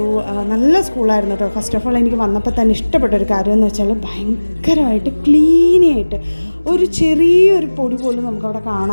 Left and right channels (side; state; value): both; inverted; correlation -1.00